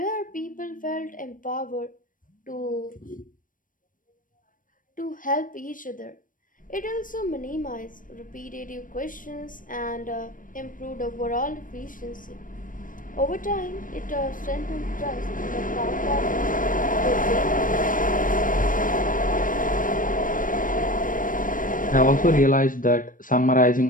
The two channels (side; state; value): right; late; 0.39 ms